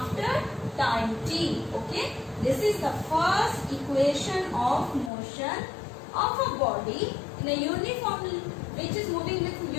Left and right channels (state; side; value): drops out; right; at 5.1 s